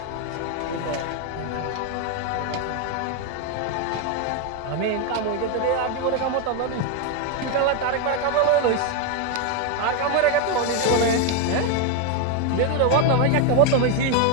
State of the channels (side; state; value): both; different; correlation 0.01